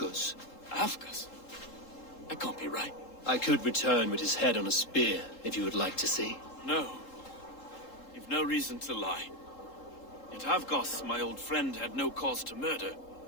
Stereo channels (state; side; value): late; right; 3.7 ms